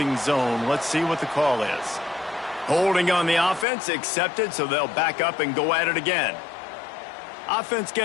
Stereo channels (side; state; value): right; drops out; at 3.7 s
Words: zone. Let's see what the call is. Holding on the offense, accepted, so they'll back up and go at it again. Offense